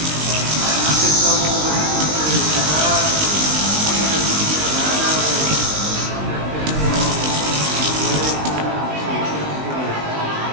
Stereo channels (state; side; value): late; left; 19 ms